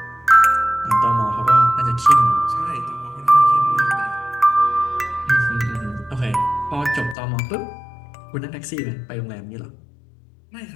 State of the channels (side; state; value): right; drops out; at 7.2 s